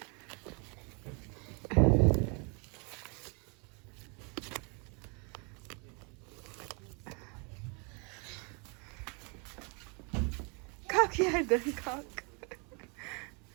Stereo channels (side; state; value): left; quieter; 33.8 dB